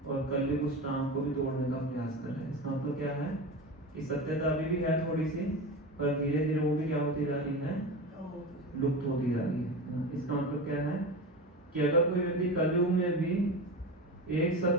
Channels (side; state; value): both; normal; correlation 0.26